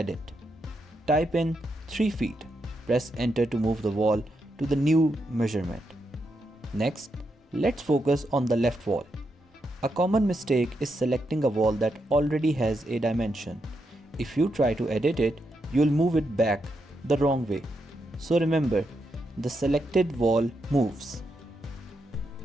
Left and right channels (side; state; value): both; normal; correlation 0.83